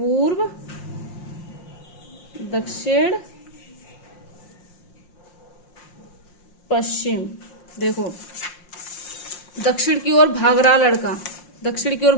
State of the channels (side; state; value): right; late; 5.6 ms